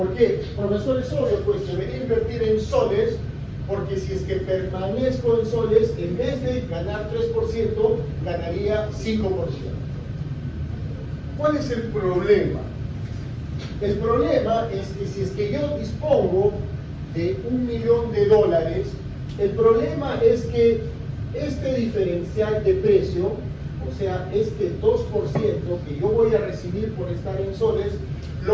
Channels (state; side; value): identical; both; correlation 1.00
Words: qué? Profesor, es obvio, pues debería invertir en soles, porque si es que permanezco en soles, en vez de ganar 3%, ganaría 5%. ¿Cuál es el problema? El problema es que si es que yo dispongo de $1 millón, el problema es que este diferencial de precio, o sea, este 2% que yo voy a recibir por estar en soles,